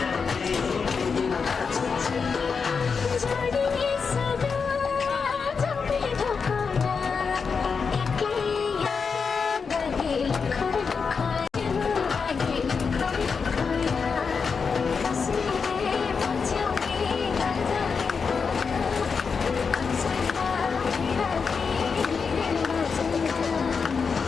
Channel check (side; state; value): right; quieter; 5.5 dB